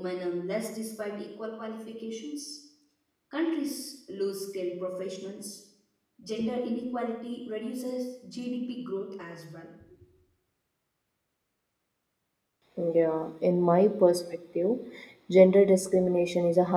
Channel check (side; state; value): both; identical; correlation 1.00